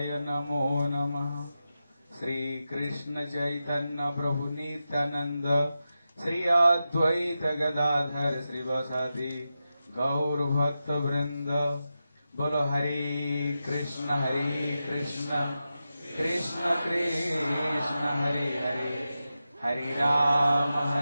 नमो नमः। श्री कृष्ण चैतन्य प्रभु नित्यानंद श्री अद्वैत गदाधर श्रीवासादि गौर भक्त वृंद बोलो हरे Krishna Krishna Krishna Hare Hare Hare Ram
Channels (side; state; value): both; inverted; correlation -0.91